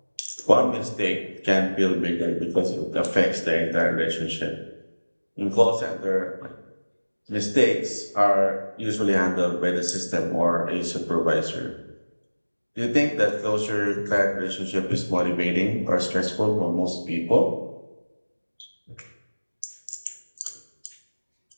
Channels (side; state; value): both; inverted; correlation -1.00